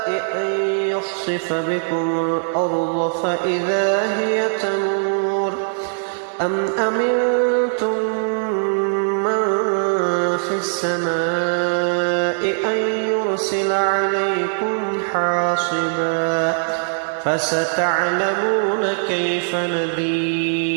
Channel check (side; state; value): left; silent; digital silence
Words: أن يخسف بكم الأرض فإذا هي تمور، أم أمنتم من في السماء أن يرسل عليكم حاصبا، فستعلمون كيف